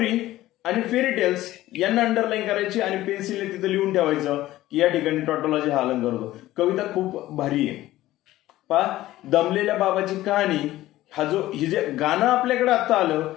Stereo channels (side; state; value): right; quieter; 15.7 dB